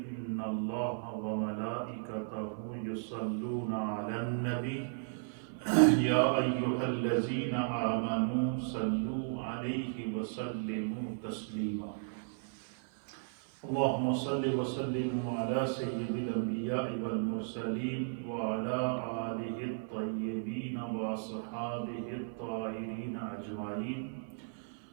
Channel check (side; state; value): left; silent; 54 dB below the other